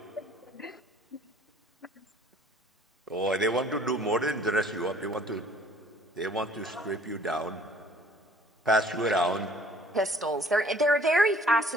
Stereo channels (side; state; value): both; normal; correlation 0.56